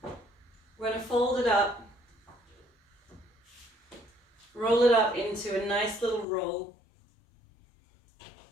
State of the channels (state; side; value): drops out; right; at 6.2 s